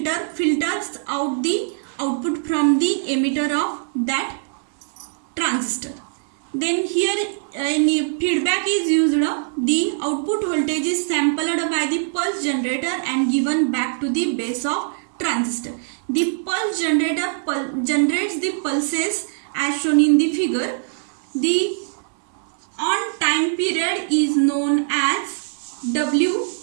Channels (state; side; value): silent; left; 64 dB below the other